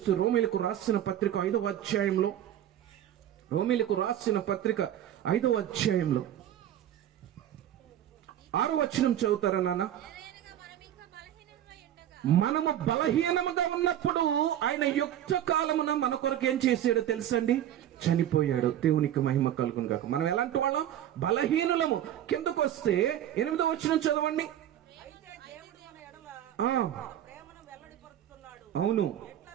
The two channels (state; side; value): quieter; left; 11.4 dB